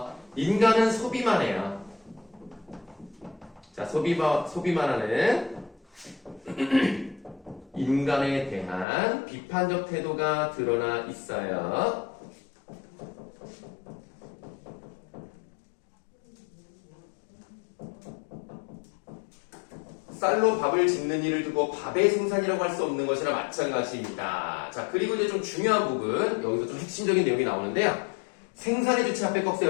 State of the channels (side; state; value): right; drops out; at 8.8 s